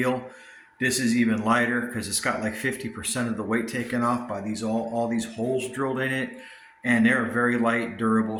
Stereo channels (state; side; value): identical; both; correlation 1.00